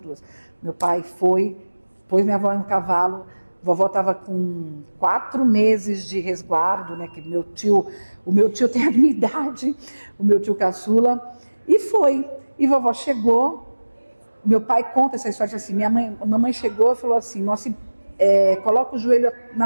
duas. Meu pai foi, pôs minha avó no cavalo, vovó estava com 4 meses de resguardo, né? Que o meu tio tem a minha idade, o meu tio caçula, e foi. E vovó chegou, meu pai conta essa história assim, minha mamãe chegou e falou assim, coloca o joelho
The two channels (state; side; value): inverted; both; correlation -1.00